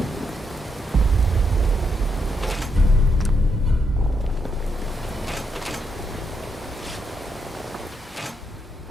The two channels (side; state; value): both; normal; correlation 0.80